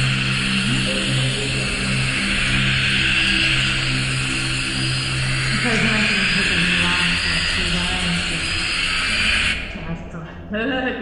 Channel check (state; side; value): identical; both; correlation 1.00